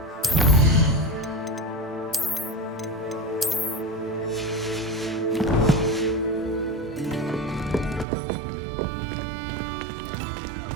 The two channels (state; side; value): drops out; left; at 8.1 s